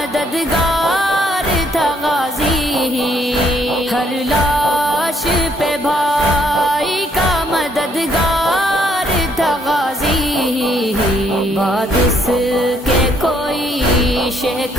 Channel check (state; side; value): normal; both; correlation 0.69